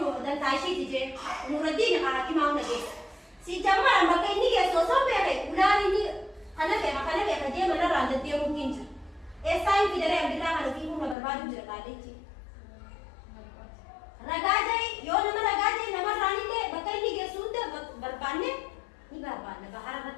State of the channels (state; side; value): drops out; right; at 11.2 s